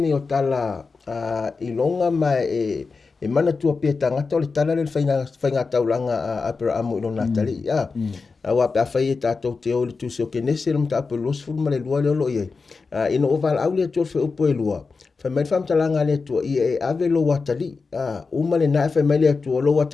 o tala I longa mai e mana tua pe tangata o le tala le whainga taulanga Abraham I lona tali. Wa pe awhai e tātou te o le tūse o kenese le mta apu los furu ma le lua le olo I e. Ino o val au le atua whi upo e lua. Whamai whamtalanga le atua I e ave lo watali. Uma le nae whamai le atua lo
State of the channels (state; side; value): quieter; right; 4.5 dB